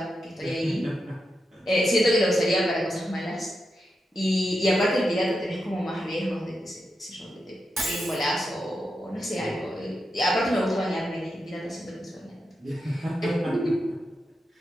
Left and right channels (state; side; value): normal; both; correlation 0.87